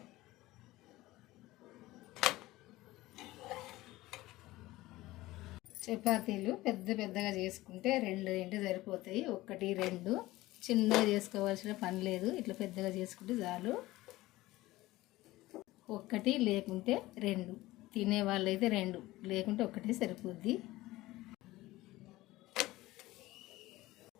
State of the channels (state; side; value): quieter; right; 18.1 dB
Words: చపాతీలు పెద్దగా చేసుకుంటే 2 సరిపోతాయి. 1 2 చిన్నగా చేసుకోవాల్సిన పని లేదు. ఇట్లా పెద్దగా చేసుకుంటే చాలు. 1 లేకుంటే 2, తినే వాళ్ళైతే 2, లేకుంటే 1 సరిపోద్ది.